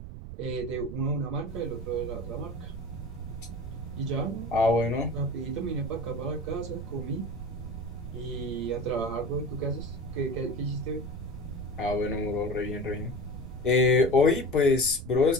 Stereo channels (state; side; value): noise; right; rumble, 10 dB below the sound